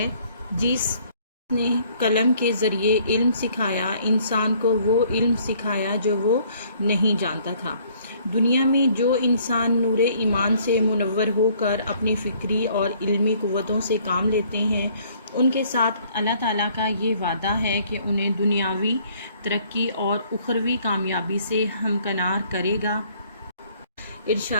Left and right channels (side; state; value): both; inverted; correlation -0.61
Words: جس نے قلم کے ذریعے علم سکھایا، انسان کو وہ علم سکھایا جو وہ نہیں جانتا تھا۔ دنیا میں جو انسان نور ایمان سے منور ہو کر اپنی فکری اور علمی قوتوں سے کام لیتے ہیں، ان کے ساتھ اللہ تعالیٰ کا یہ وعدہ ہے کہ انہیں دنیاوی ترقی اور اخروی کامیابی سے ہمکنار کرے گا۔